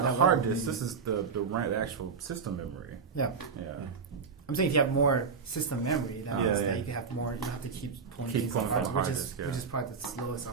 the that hard level disk. means- This is the actual system memory. Yeah. Yeah. I'm saying if you have more system memory, that means Yeah, that yeah. you can have more. You don't have to keep pulling Keep things on pulling hard, from which hard is disk, yeah. which is probably the slowest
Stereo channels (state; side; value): quieter; left; 5.6 dB